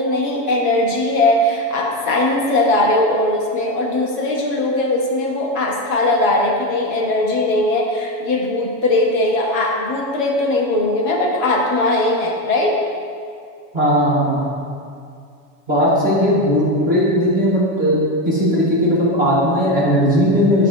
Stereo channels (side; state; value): left; late; 7.1 ms